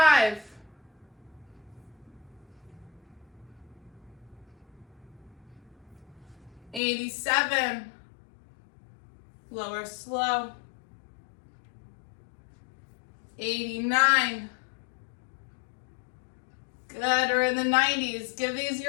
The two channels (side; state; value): right; drops out; at 6.8 s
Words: 87, lower slow, 89, good, we're in the 90s, give these